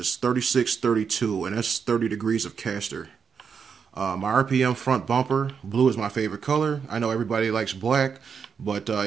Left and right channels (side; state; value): left; quieter; 6.4 dB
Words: 3632, and that's 30 degrees of caster. My RPM front bumper, blue is my favorite color. I know everybody likes black, but